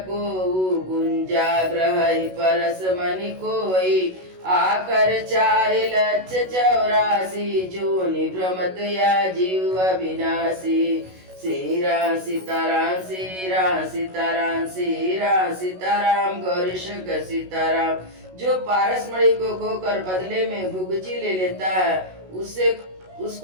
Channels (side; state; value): left; late; 16 ms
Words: कोउ, गुंजा ग्रहै परस मनि कोई, आकर 4,84,000, जो निभ्रमत या जीव अविनाशी। श्री राम सीताराम, श्री राम सीताराम, श्री राम सीताराम, गौरी शंकर सीताराम। जो पारसमणि को खोकर बदले में गुगची ले लेता है,